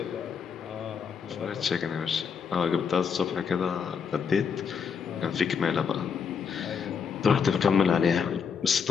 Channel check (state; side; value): quieter; right; 6.4 dB